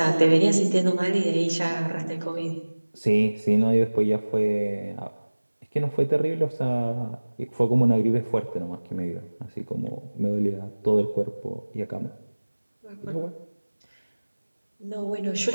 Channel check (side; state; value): both; inverted; correlation -1.00